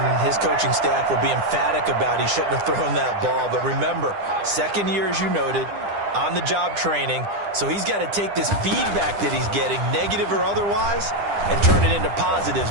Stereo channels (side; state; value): left; late; 10 ms